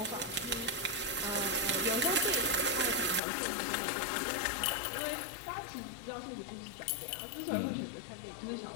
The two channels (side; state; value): right; drops out; at 3.2 s